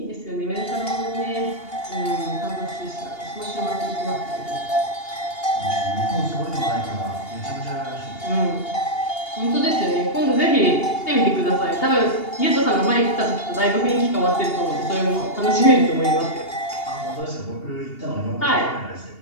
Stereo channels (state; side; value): late; right; 2.8 ms